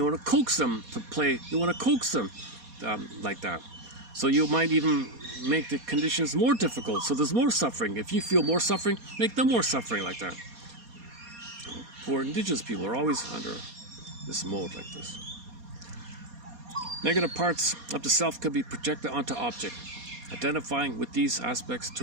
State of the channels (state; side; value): late; left; 4.2 ms